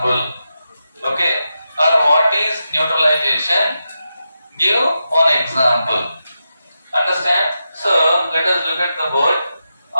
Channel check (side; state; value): both; inverted; correlation -0.88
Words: Okay, or what is neutralization? Give one example. Understand? So let us look at the board.